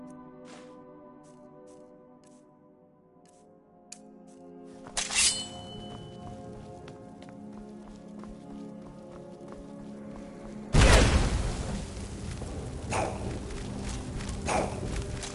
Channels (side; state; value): both; identical; correlation 1.00